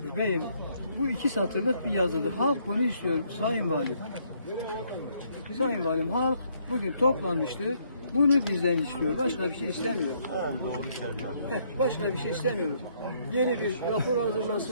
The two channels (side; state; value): both; inverted; correlation -0.69